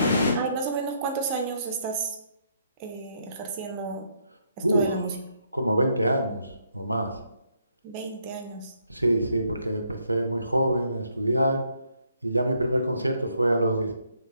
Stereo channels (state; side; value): inverted; both; correlation -0.72